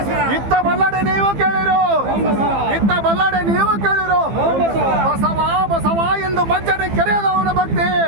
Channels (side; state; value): left; late; 15 ms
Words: ಇತ್ತ ಬಲ್ಲಡೆ ನೀವು ಕೇಳಿರು ಇತ್ತ ಬಲ್ಲಡೆ ನೀವು ಕೇಳಿರು ಬಸವ ಬಸವ ಎಂದು ಮಜ್ಜನೆ ಕೆರೆಯದವನ ಭಕ್ತಿ